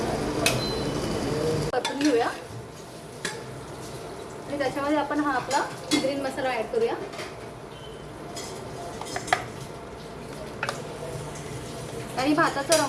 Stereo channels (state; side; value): identical; both; correlation 1.00